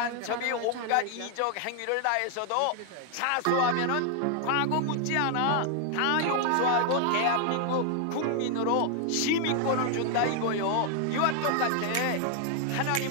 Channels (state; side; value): different; both; correlation 0.00